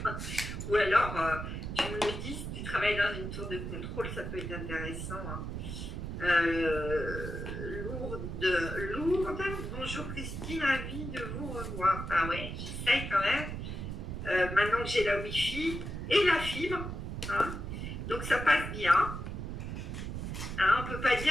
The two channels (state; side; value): noise; right; rumble, 5 dB below the sound